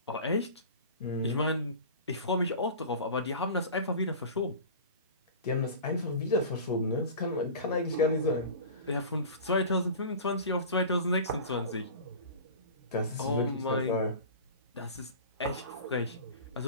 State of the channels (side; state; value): both; inverted; correlation -0.36